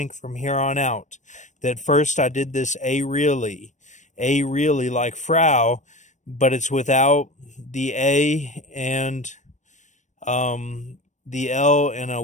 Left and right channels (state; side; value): late; right; 0.35 ms